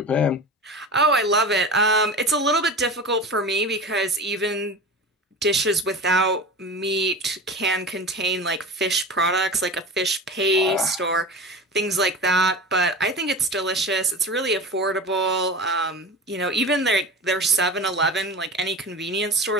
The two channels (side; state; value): both; normal; correlation 0.31